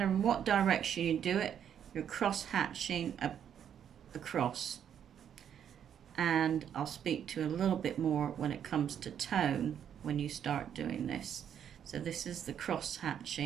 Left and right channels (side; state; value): left; quieter; 9.0 dB